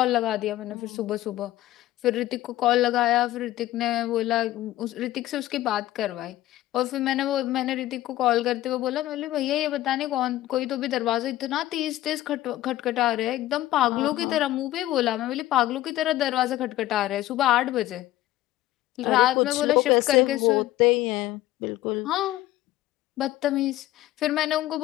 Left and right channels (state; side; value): quieter; right; 15.2 dB